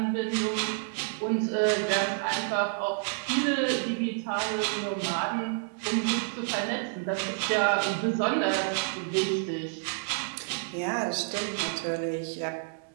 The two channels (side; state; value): left; silent; 58 dB below the other